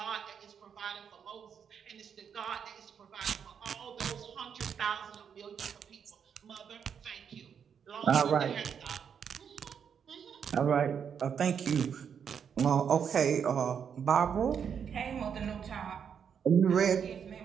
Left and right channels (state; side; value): quieter; left; 7.5 dB